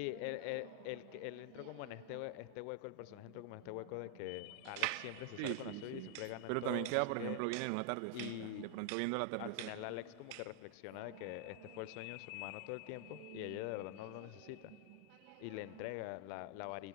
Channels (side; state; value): both; different; correlation 0.00